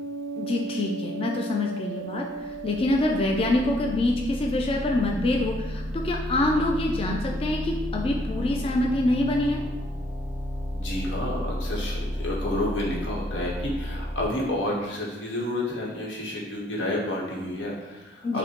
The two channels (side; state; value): both; normal; correlation 0.65